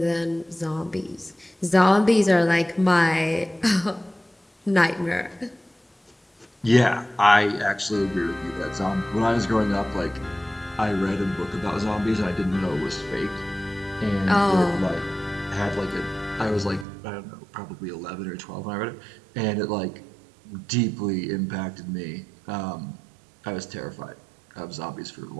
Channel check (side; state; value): left; drops out; at 16.9 s